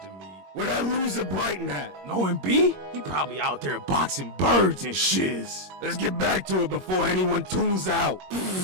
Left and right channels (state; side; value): late; left; 21 ms